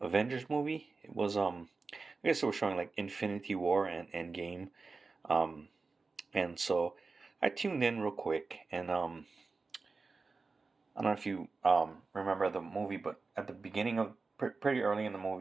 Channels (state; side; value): quieter; left; 4.1 dB